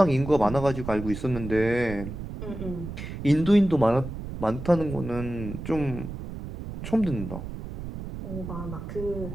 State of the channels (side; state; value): right; noise; rumble, 8 dB below the sound